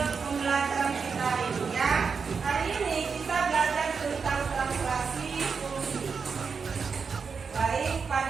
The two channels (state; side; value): quieter; left; 5.5 dB